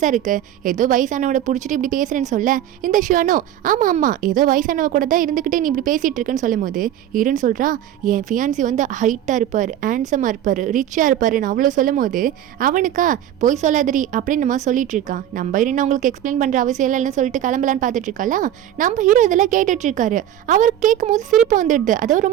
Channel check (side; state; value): left; quieter; 11.4 dB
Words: இருக்குது, ஏதோ வயசானவட பிடிச்சிட்டு இப்படி பேசுகிறேன்னு சொல்ல இந்த ஷியானோ ஆமாம் ஏதோ வயசானவ கூட தான் இருந்துக்கிட்டே நீ இப்படி பேசிகிட்டு இருக்குன்னு சொல்லும் போது இருன்னு சொல்கிறா என் ஃபியான்சி வந்து ஹைட்டாக இருப்பார், ஹேண்ட்ஸமாக இருப்பார், ரிச்சாக இருப்பாருன்னு அவ்வளோ சொல்லும் போது அவனுக்கா போய் சொல்லாதரி அப்படின்னு நம்ம சொல்லிட்டு இருக்கான். நம்ம இருன்னு அவங்களுக்கு எக்ஸ்பிளைன் பண்ணுற அவசியம் இல்லைன்னு சொல்லிட்டு கிளம்பலான்னு பார்த்துட்டு இருக்காளா. நம்ம ஹீரோ இதெல்லாம் கேட்டுட்டு இருக்காரு. அவர் கேட்கும் போது சிரிப்பு வந்துடுது. அதாவது